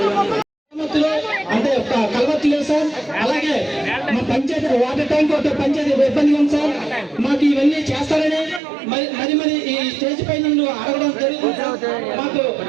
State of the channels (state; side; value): drops out; left; at 8.6 s